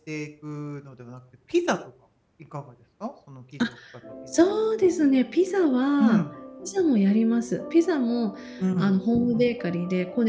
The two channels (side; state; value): both; identical; correlation 1.00